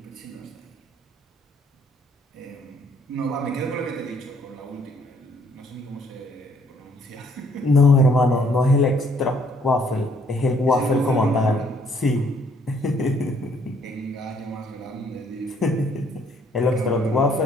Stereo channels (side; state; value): both; normal; correlation 0.65